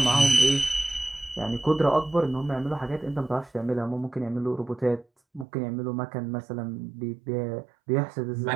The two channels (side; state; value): left; drops out; at 5.5 s